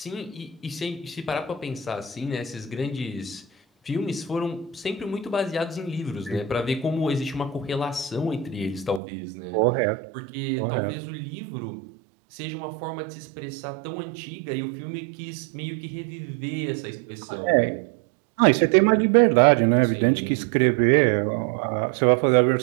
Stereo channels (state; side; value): drops out; left; at 9.0 s